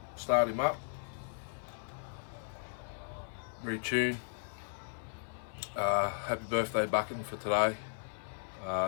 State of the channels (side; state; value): right; silent; 54 dB below the other